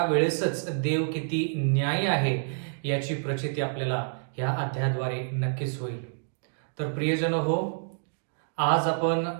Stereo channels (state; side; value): silent; left; digital silence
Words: देव किती न्यायी आहे याची प्रचिती आपल्याला या अध्यायाद्वारे नक्कीच होईल. तर प्रियजन हो, आज आपण